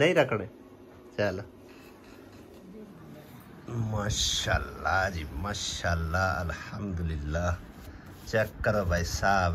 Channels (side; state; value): both; identical; correlation 1.00